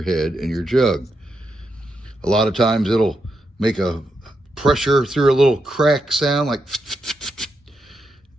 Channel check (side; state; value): both; normal; correlation 0.84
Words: head and your jug. A lot of times it'll make a pressure through a little crack sound, like,